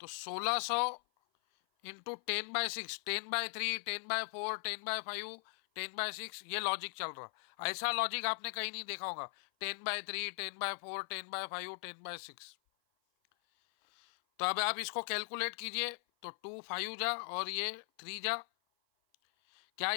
तो 1600 इंटू 10/6, 10/3, 10/4, 10/5, 10/6, ये लॉजिक चल रहा। ऐसा लॉजिक आपने कहीं नहीं देखा होगा, 10/3, 10/4, 10/5, 10/6। तो अब आप इसको कैलकुलेट कीजिए, तो 2 5 जा और ये 3 जा। क्या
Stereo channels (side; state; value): right; silent; 52 dB below the other